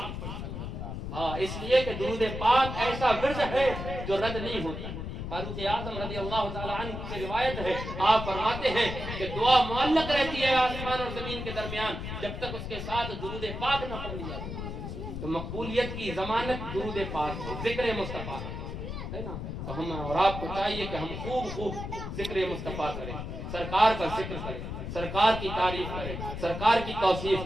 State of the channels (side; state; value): left; noise; rumble, 6 dB below the sound